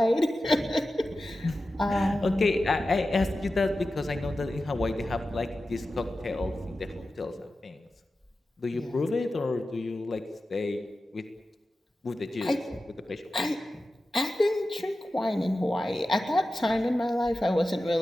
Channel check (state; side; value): normal; both; correlation 0.93